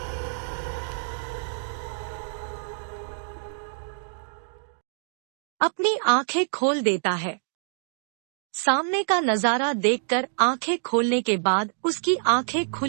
अपनी आंखें खोल देता है। सामने का नजारा देखकर आंखें खोलने के बाद उसकी आंखें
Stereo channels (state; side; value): silent; left; digital silence